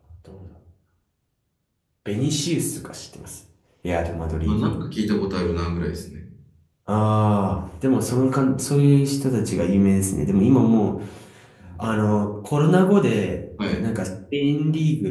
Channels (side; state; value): both; identical; correlation 1.00